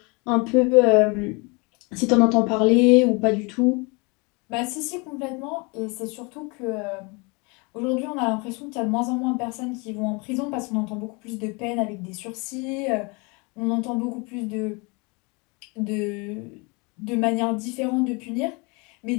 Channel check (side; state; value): right; quieter; 29.6 dB